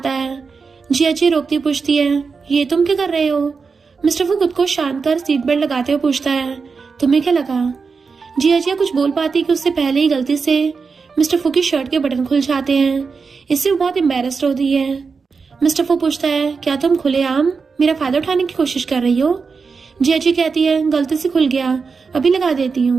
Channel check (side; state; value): left; quieter; 5.0 dB